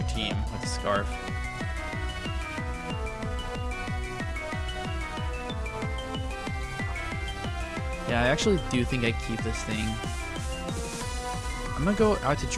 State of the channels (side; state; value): both; identical; correlation 1.00